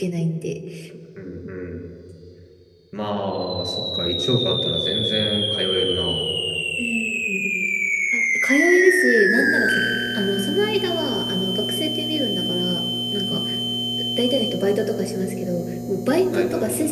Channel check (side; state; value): both; identical; correlation 1.00